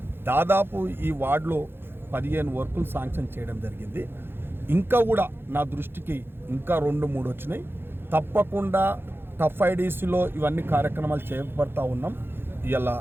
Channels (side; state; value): left; late; 0.10 ms